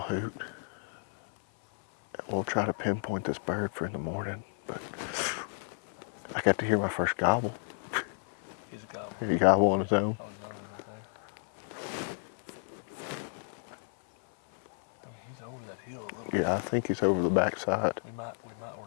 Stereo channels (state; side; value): silent; right; 56 dB below the other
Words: We'll try to pinpoint this bird for in the morning, but I got to hear my first gobble. He's a gobble. He gobble on his own. On his own right there. I mean, he's over that hill a little bit. Yeah, I think he's over the backside. We might